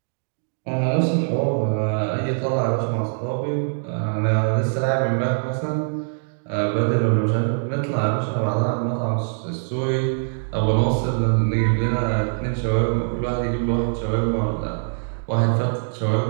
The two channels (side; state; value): left; silent; digital silence